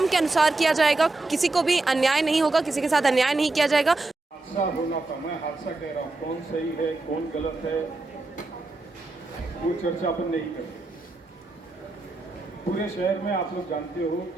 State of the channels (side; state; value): left; quieter; 3.2 dB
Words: के अनुसार किया जाएगा, किसी को भी अन्याय नहीं होगा, किसी के साथ अन्याय नहीं किया जाएगा। हादसा होना था, मैं हादसा कह रहा हूँ, कौन सही है कौन गलत है वो चर्चा अपन नहीं करते। पूरे शहर में आप लोग जानते हो